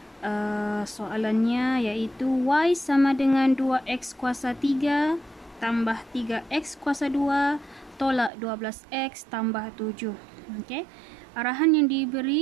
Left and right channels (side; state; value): left; drops out; at 8.3 s